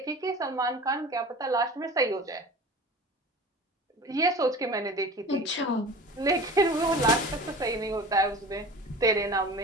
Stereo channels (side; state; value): both; normal; correlation 0.37